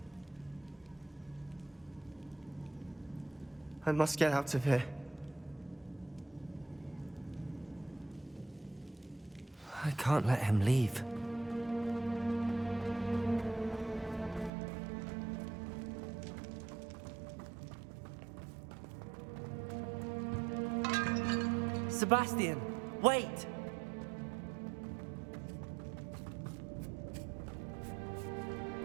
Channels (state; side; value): drops out; left; at 14.5 s